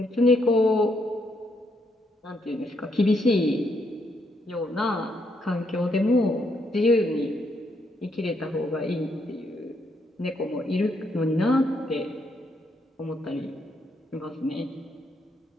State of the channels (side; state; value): both; normal; correlation 0.76